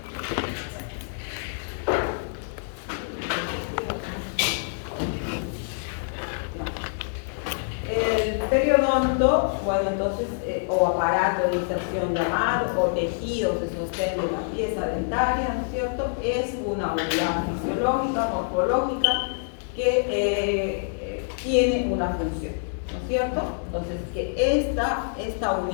El periodonto, bueno, entonces, o aparato de inserción llamado, o tejidos de sostén de la pieza dentaria, ¿no es cierto? Es una unidad fisiológica, morfológica, que tiene una función, ¿no es cierto? Entonces, que esta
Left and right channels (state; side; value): silent; right; digital silence